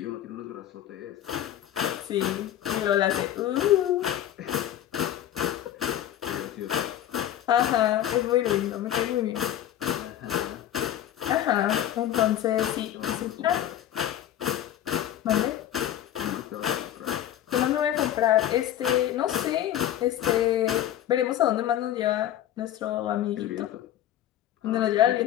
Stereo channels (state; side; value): quieter; right; 11.7 dB